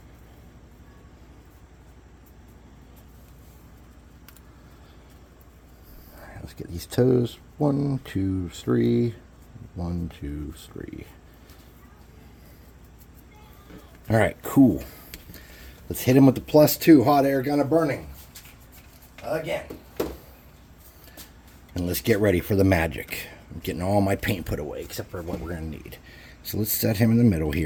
Let's get these toes. 1, 2, 3. 1, 2, 3. All right, cool. Let's hit him with the +2 hot air gun of burning. Again. And let's get ready for the magic. I'm getting all my paint put away except for what we're going to need. So let's set him in the middle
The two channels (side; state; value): both; identical; correlation 1.00